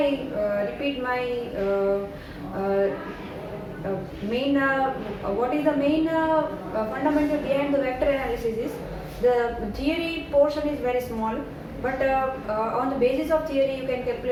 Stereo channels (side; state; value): both; identical; correlation 1.00